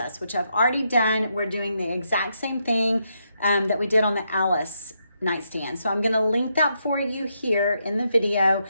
which I've already done. We're doing the exact same thing that we did on the Alice nightstand. So I'm going to link that for you here in the video.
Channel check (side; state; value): both; inverted; correlation -0.80